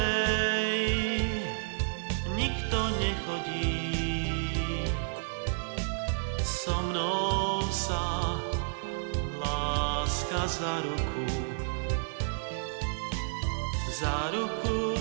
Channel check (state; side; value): silent; left; digital silence